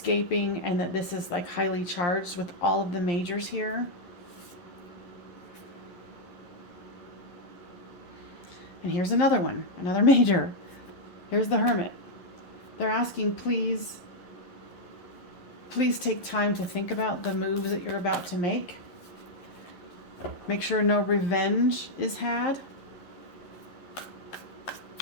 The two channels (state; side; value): late; right; 11 ms